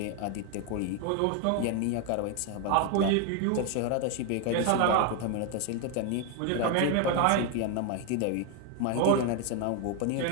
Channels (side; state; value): both; different; correlation 0.01